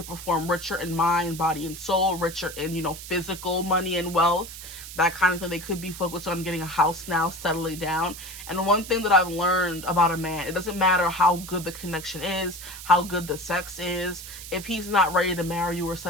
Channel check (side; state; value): right; noise; hiss, 12 dB below the sound